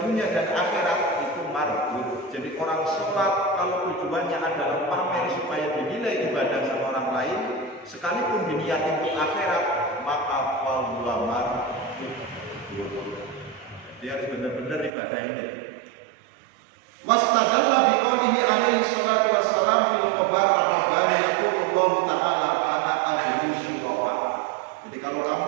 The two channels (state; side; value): drops out; left; at 14.9 s